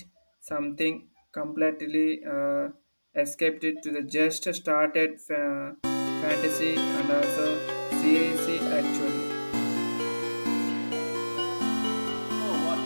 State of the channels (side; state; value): both; inverted; correlation -1.00